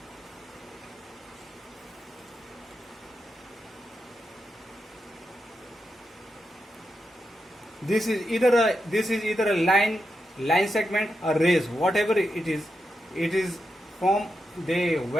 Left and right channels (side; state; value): both; normal; correlation 0.87